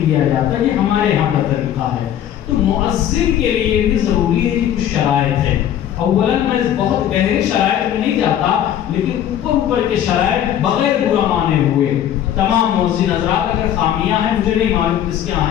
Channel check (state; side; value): quieter; right; 10.7 dB